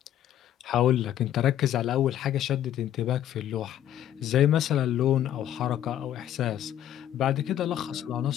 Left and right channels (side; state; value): right; quieter; 11.4 dB